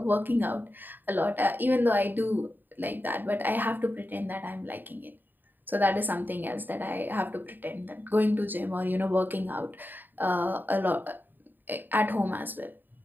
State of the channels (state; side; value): late; left; 0.091 ms